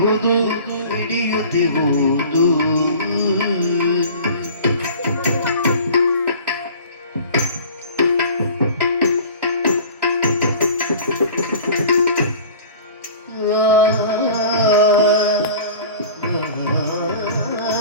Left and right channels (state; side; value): inverted; both; correlation -0.43